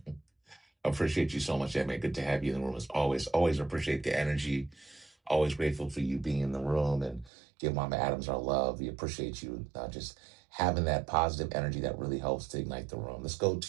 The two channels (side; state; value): left; drops out; at 7.3 s